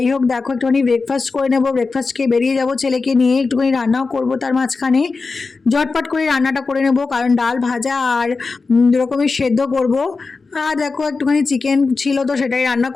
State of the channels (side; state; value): right; quieter; 4.2 dB